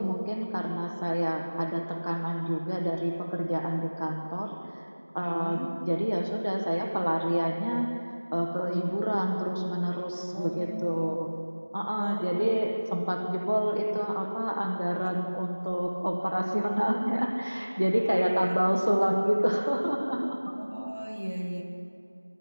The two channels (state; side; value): inverted; both; correlation -1.00